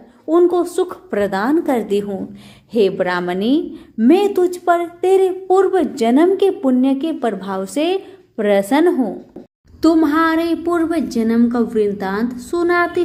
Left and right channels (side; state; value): both; identical; correlation 1.00